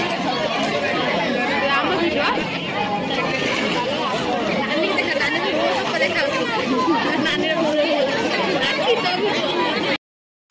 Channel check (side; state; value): both; identical; correlation 1.00